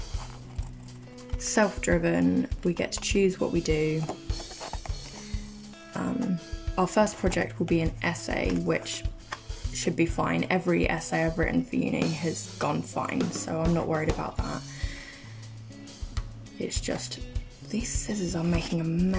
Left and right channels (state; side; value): identical; both; correlation 1.00